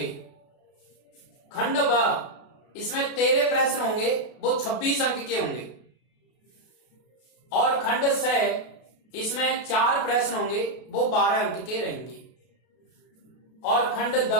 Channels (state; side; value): late; right; 32 ms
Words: खंड ब, इसमें 13 प्रश्न होंगे, वो 26 अंक के होंगे। और खंड स, इसमें 4 प्रश्न होंगे, वो 12 अंक के रहेंगे। और खंड द,